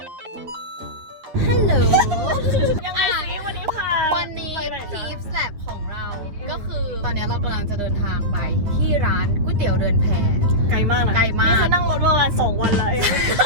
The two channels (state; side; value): late; left; 9.4 ms